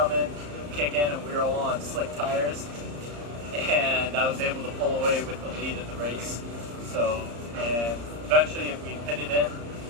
in, kick in, and we were all on slick tires, and I was able to pull away with the lead of the race. So, and eventually we pitted in,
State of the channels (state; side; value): late; left; 34 ms